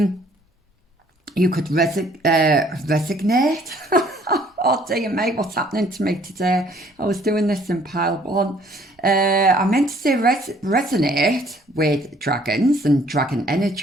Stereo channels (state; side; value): normal; both; correlation 0.60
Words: You could resignate. Oh dear me, what's happening to me today? I was doing this in pile 1. I meant to say resonate with dragons and dragon